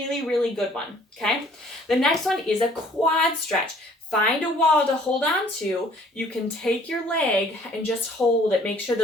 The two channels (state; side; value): normal; both; correlation 0.57